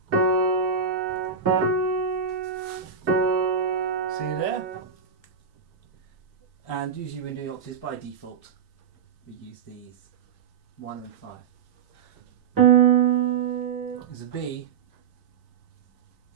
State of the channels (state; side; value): quieter; left; 6.5 dB